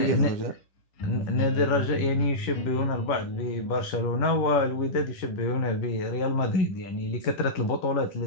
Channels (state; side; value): late; right; 11 ms